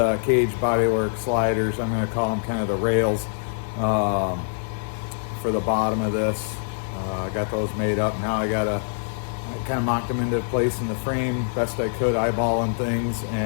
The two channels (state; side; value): silent; right; 62 dB below the other